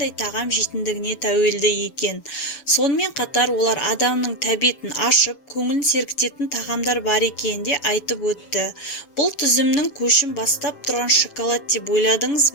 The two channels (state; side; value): late; right; 7.1 ms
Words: тағам жейтіндігіне тәуелді екен. Сонымен қатар олар адамның тәбетін ашып, көңілін сергітетін тағамдар бар екенін де айтып өтті. Бұл тізімнің көшін бастап тұрған шоколад деп ойладыңыз